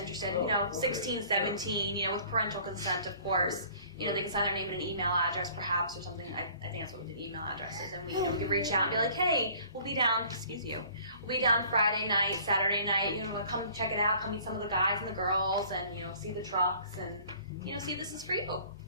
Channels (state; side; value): inverted; both; correlation -0.52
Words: you know, 16, 17, you know, with parental consent, of course. You know, they can sign their name and an email address, perhaps, or something. I think that's what we did, email addresses. And we, you know, we could reach out and be like, hey, we'll be down, we'll be down Friday night, Saturday night, you know, come check it out, come meet some of the guys and the girls, and, you know, see the trucks, and, you know, see if this is for you.